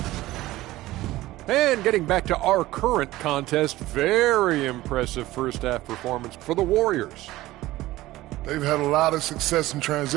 And getting back to our current contest, very impressive first half performance for the Warriors. They've had a lot of success in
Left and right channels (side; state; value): left; quieter; 17.0 dB